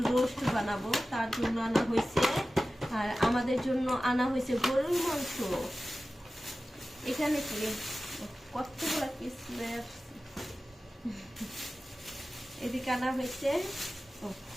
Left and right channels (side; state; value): both; normal; correlation 0.95